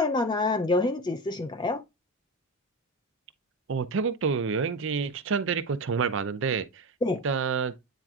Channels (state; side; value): normal; both; correlation 0.21